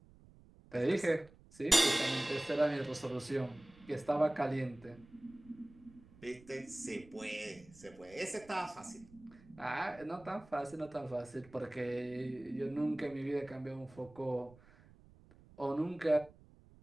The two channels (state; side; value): noise; right; rumble, 24 dB below the sound